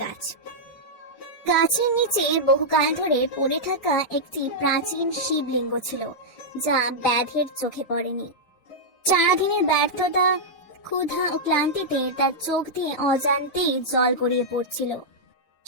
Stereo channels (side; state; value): right; late; 6.6 ms